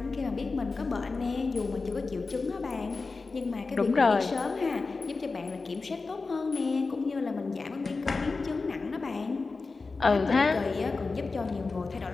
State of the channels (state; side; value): quieter; right; 4.0 dB